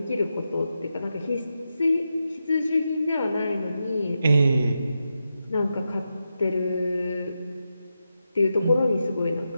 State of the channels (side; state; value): both; inverted; correlation -0.87